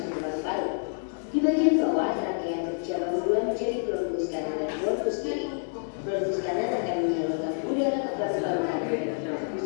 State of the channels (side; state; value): right; silent; 59 dB below the other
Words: ke paru-paru. Di bagian bawah, trakea berjalan bulan menjadi bronkus kanan dan bronkus kiri. Bronkus kanan akan menyalurkan udara ke paru-paru kanan dan